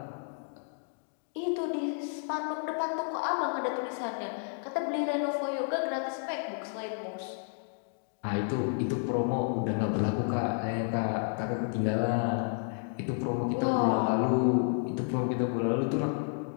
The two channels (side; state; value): right; silent; 57 dB below the other